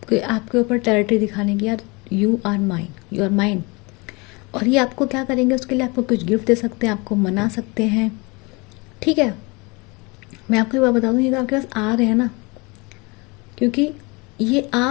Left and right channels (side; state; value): right; quieter; 27.4 dB